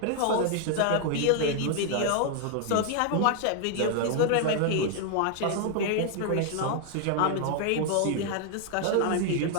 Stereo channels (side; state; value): both; different; correlation 0.00